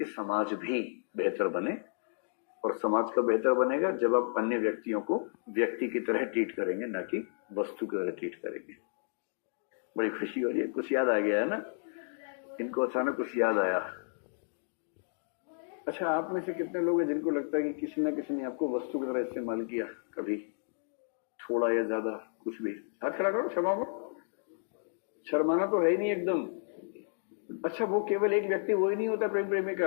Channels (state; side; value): silent; right; digital silence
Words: समाज भी बेहतर बने। और समाज का बेहतर बनेगा जब आप अन्य व्यक्तियों को व्यक्ति की तरह ट्रीट करेंगे, ना कि वस्तु की तरह ट्रीट करेंगे। बड़ी खुशी हो रही है, कुछ याद आ गया है ना इनको, अचानक कुछ याद आया। अच्छा, आप में से कितने लोग हैं जिनको लगता है कि किसी ना किसी ने आपको वस्तु की तरह इस्तेमाल किया कभी, थोड़ा या ज्यादा, कुछ भी? हाथ खड़ा करो, शर्माओ। शर्माना तो है ही नहीं एकदम। अच्छा, वो केवल एक व्यक्ति वो ही नहीं होता प्रेम